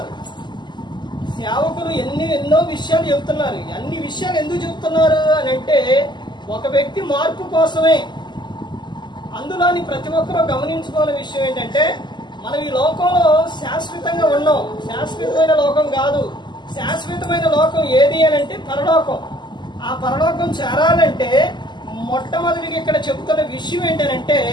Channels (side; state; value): right; late; 0.21 ms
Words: సేవకులు ఎన్నో విషయాలు చెబుతున్నారు. అన్ని విషయాలు ఎందుకు చెబుతున్నారు అని అంటే, ఒక వ్యక్తి మార్పు కోసమే. అందులోని ప్రతి ఒక్కరూ గమనించుకోవాల విషయం ఏంటంటే, మనం ఈ లోకంలో శాశ్వతంగా ఉన్నాం. శాశ్వతమైన లోకం కాదు. శాశ్వతమైన లోకం ఏది అని అంటే పరలోకం. ఆ పరలోకం చేరాలంటే మొట్టమొదటిగా ఇక్కడ చెబుతున్న విషయం ఏంటంటే,